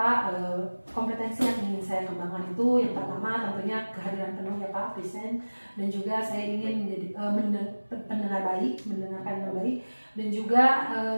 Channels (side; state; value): both; inverted; correlation -1.00